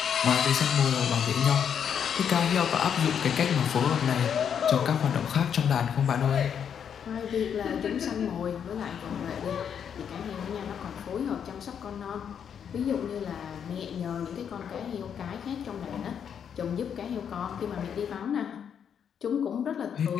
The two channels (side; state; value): right; quieter; 8.0 dB